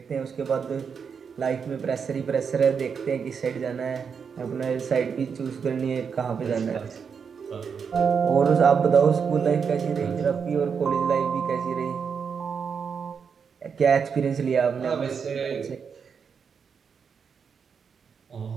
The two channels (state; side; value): quieter; left; 6.4 dB